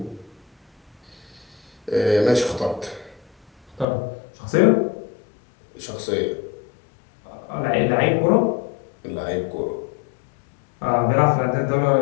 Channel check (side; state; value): right; drops out; at 3.9 s